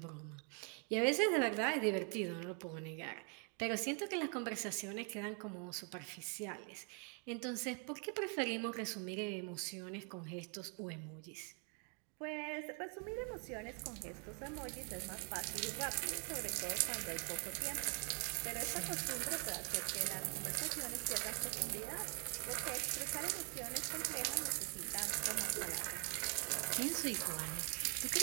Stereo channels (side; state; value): left; quieter; 38.5 dB